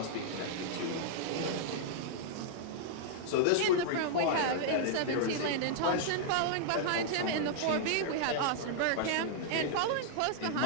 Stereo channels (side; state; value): both; different; correlation -0.01